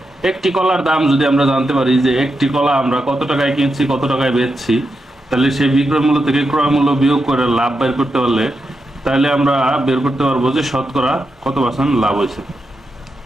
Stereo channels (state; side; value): normal; both; correlation 0.86